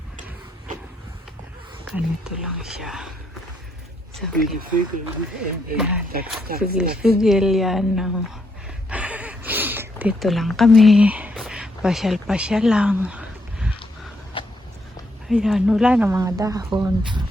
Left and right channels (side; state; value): both; normal; correlation 0.76